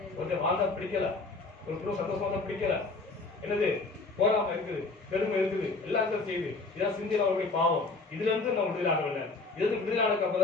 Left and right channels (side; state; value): right; quieter; 3.6 dB